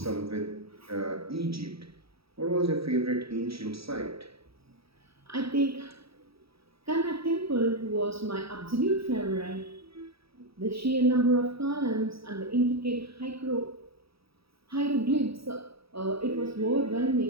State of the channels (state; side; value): late; left; 0.77 ms